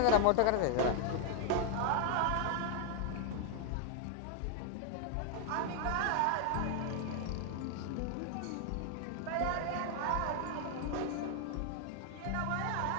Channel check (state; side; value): different; both; correlation 0.00